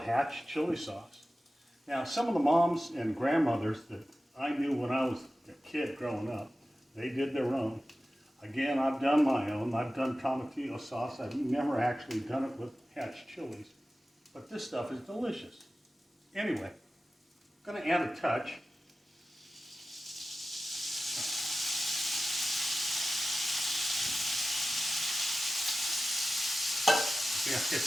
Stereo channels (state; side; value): normal; both; correlation 0.94